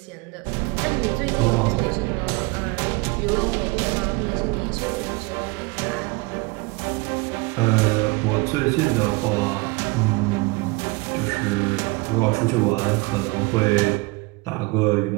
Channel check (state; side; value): quieter; left; 25.1 dB